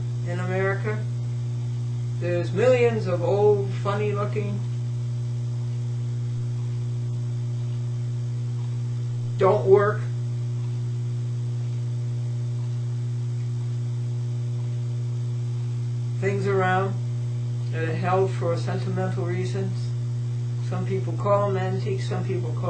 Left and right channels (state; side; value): identical; both; correlation 1.00